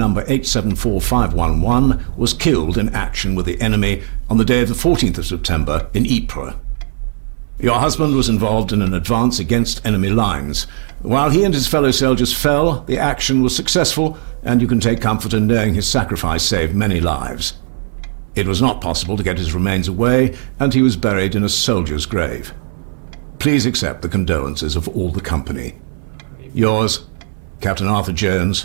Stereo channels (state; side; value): silent; left; 63 dB below the other